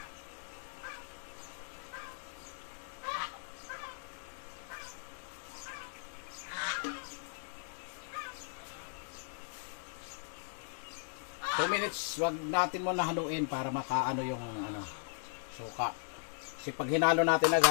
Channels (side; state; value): right; silent; digital silence